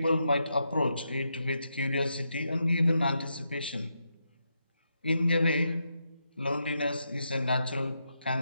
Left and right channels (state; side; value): inverted; both; correlation -0.84